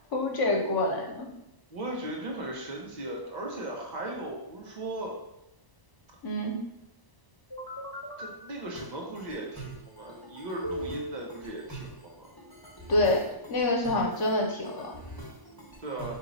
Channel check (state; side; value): late; right; 1.0 ms